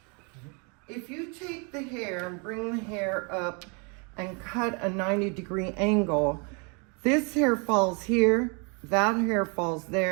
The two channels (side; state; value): left; quieter; 34.0 dB